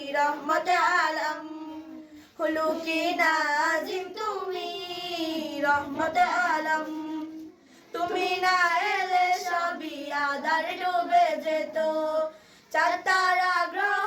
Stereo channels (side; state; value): both; identical; correlation 1.00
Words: রহমতে আলম। খুলুকি নাজিম তুমি রহমতে আলম। তুমি না এলে সবই আধার ডুবে যেত, চাঁদ তারা